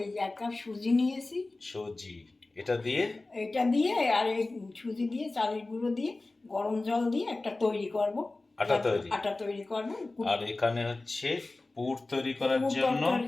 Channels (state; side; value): quieter; right; 3.1 dB